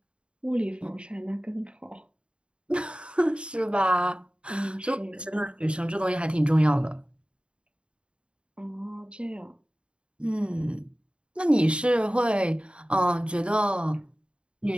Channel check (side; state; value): left; late; 0.055 ms